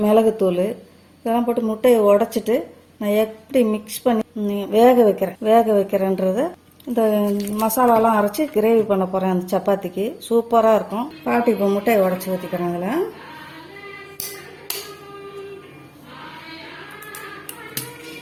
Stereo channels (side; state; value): both; identical; correlation 1.00